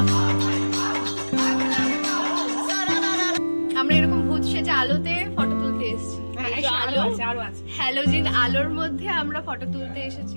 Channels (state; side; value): inverted; both; correlation -1.00